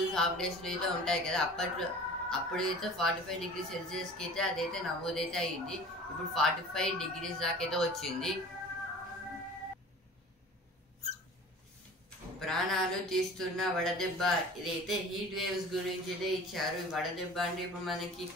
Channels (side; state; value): both; normal; correlation 0.42